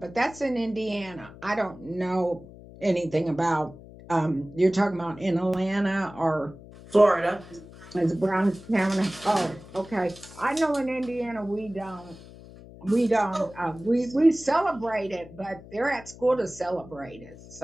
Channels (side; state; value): left; noise; hum, 18 dB below the sound